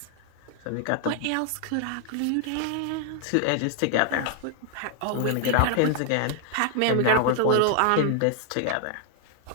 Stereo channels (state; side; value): different; both; correlation 0.00